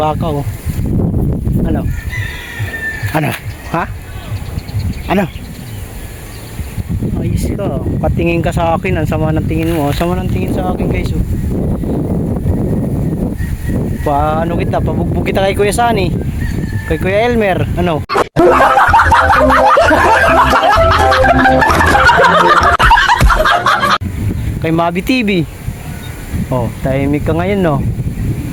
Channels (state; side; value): identical; both; correlation 1.00